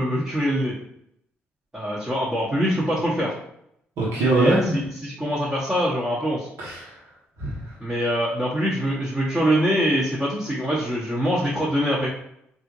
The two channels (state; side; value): normal; both; correlation 0.75